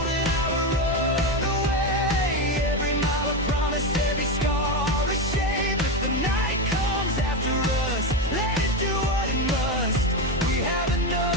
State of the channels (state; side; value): normal; both; correlation 0.14